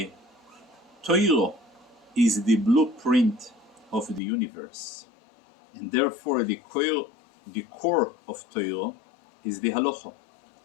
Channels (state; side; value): drops out; right; at 4.2 s